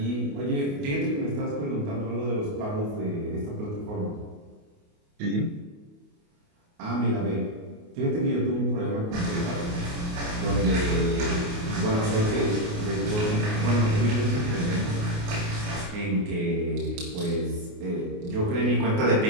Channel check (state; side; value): late; left; 28 ms